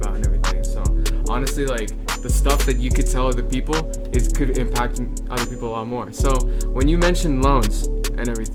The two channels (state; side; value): identical; both; correlation 1.00